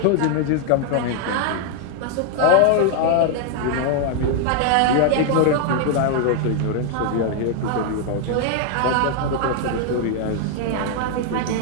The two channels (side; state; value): both; different; correlation 0.00